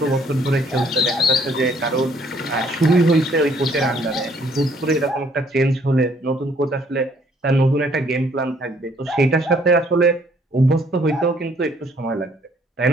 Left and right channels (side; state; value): both; normal; correlation 0.64